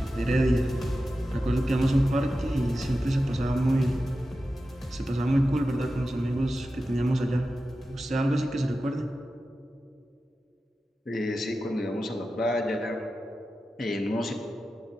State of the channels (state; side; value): normal; both; correlation 0.93